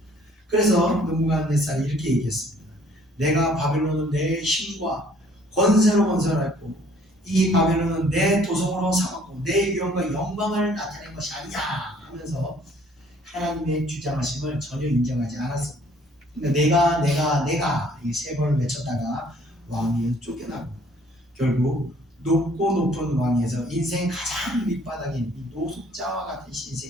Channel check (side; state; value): both; normal; correlation 0.59